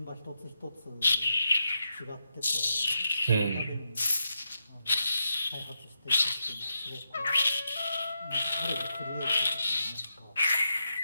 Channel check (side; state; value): both; inverted; correlation -0.85